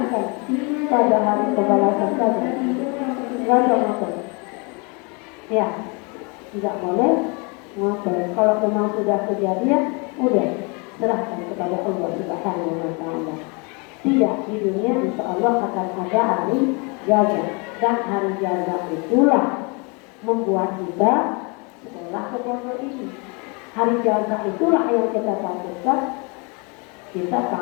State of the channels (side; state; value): right; quieter; 31.4 dB